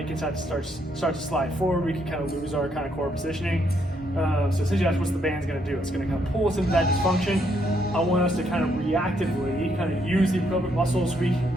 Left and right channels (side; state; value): both; normal; correlation 0.73